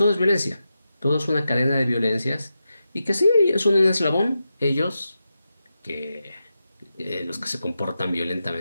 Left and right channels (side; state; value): both; inverted; correlation -0.89